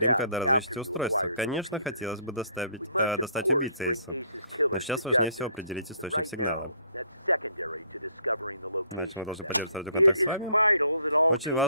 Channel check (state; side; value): inverted; both; correlation -0.63